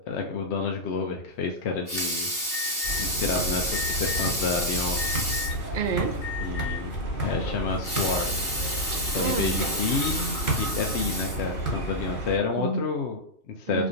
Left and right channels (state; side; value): late; right; 2.8 ms